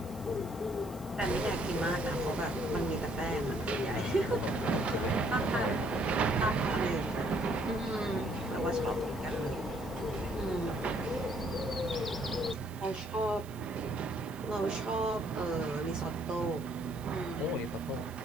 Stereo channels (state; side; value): noise; right; hiss, 21 dB below the sound